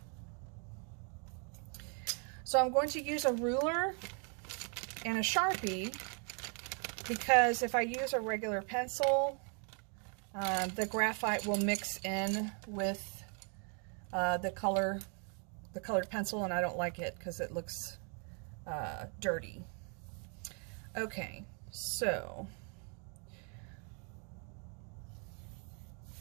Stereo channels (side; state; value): left; quieter; 38.9 dB